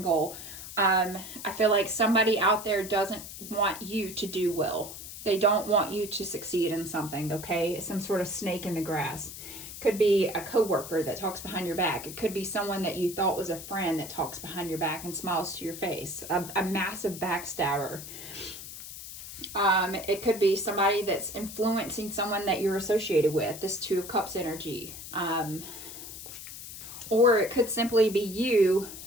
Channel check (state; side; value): noise; left; hiss, 11 dB below the sound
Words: goal. I feel like somebody out there doesn't want you to do well. They don't want you to succeed in something, okay? Some sort of snake in the grass. Could be a coworker that talks behind your back. It could be someone that you thought was a friend that talks behind your back and smiles to your face. A massive backstabber. It could be somebody that's influencing someone that you're associated with. This Two of Cups energy. Or it could simply be you